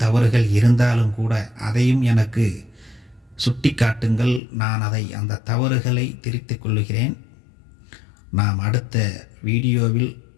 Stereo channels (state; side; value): drops out; right; at 4.4 s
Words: தவறுகள் இருந்தாலும் கூட அதையும் எனக்கு சுட்டி காட்டுங்கள். நான் அந்த தவறுகளை திருத்திக் கொள்ளுகிறேன். நாம் அடுத்த வீடியோவில்